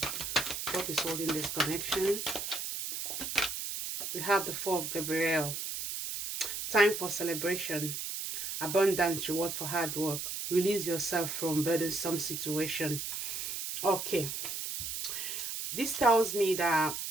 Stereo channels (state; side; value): noise; right; hiss, 4 dB below the sound